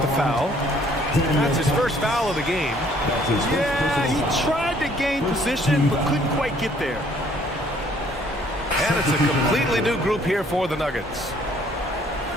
foul. That's his first foul of the game. Yeah, he tried to gain position, but couldn't quite get there. And it's a completely new group here for the Nuggets.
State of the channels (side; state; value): both; normal; correlation 0.61